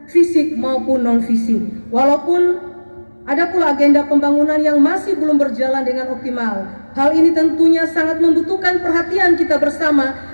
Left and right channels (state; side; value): inverted; both; correlation -1.00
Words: fisik maupun non-fisik. Walaupun ada pula agenda pembangunan yang masih belum berjalan dengan optimal. Hal ini tentunya sangat membutuhkan perhatian kita